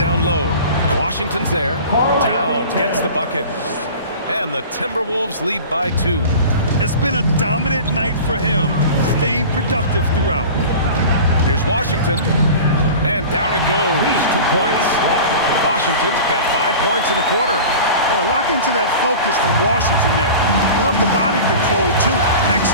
low. Washington's there. Towns gets the bucket. And the Timberwolves lead by 2. It's been a dominant night for him, staying productive throughout. Here's Washington. And down it goes. 2 points. Washington's got 5 points in the quarter. Boy, lock into that focus from Washington there. Love the body control, too.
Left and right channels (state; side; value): inverted; both; correlation -0.37